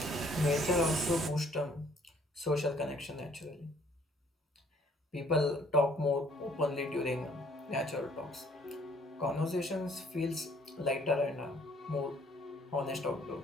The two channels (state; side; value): normal; both; correlation 0.61